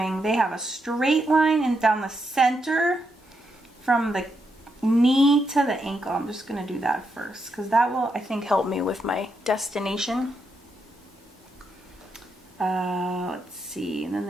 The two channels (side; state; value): both; normal; correlation 0.81